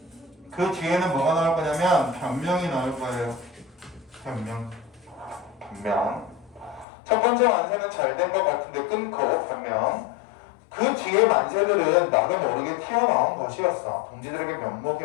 그 뒤에는 뭐가 나올 거냐면 변명이 나올 거예요. 변명. 첫 번째 만세는 잘 된 것 같은데 끊고 변명. 그 뒤에 만세들은 나도 모르게 튀어나온 것이었어. 동지들에게 면목이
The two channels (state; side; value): drops out; right; at 6.9 s